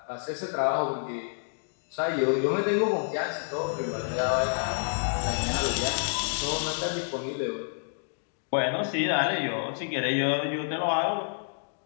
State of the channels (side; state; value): right; silent; digital silence